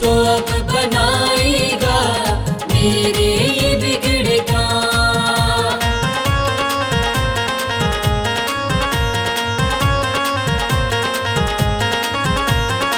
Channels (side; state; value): both; identical; correlation 1.00